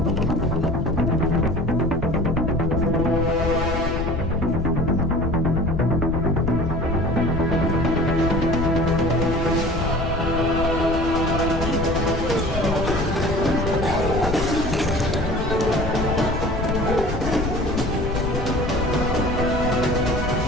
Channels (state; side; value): noise; left; rumble, 5 dB below the sound